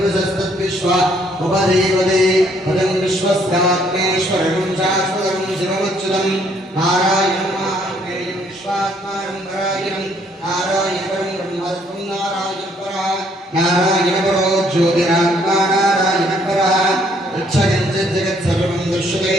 उपदेवते पदं विश्वस्यात्मेश्वरं शाश्वतं शिवमच्युतं नारायणं महादेवं विश्वात्मानं परायणं नारायणं ब्रह्मत्वं नारायण परो ज्योतिरात्मा नारायण परः यच्चकिञ्चित् जगत् सर्वं दृश्यते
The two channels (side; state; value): both; normal; correlation 0.66